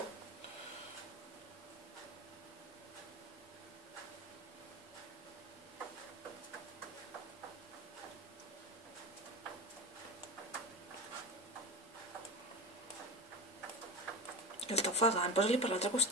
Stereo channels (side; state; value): both; normal; correlation 0.24